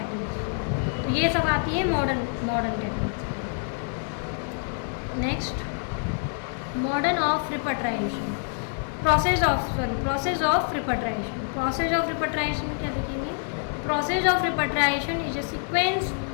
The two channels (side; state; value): right; silent; 61 dB below the other